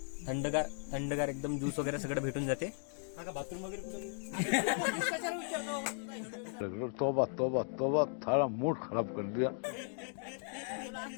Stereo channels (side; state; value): right; silent; 53 dB below the other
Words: थंडगार एकदम ज्यूस वगैरे सगळं भेटून जाते. बाथरूम वगैरे तोबा तोबा तोबा, थारा मूड खराब कर दिया.